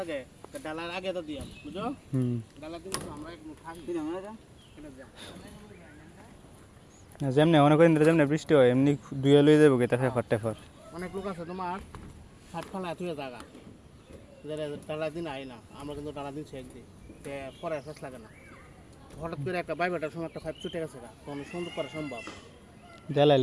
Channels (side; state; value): both; identical; correlation 1.00